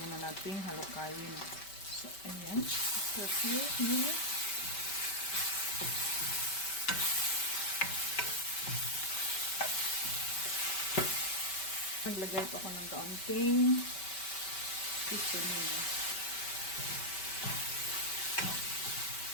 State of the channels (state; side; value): late; right; 5.2 ms